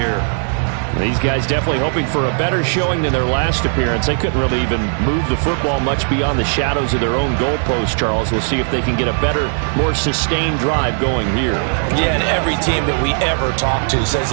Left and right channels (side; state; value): left; silent; 56 dB below the other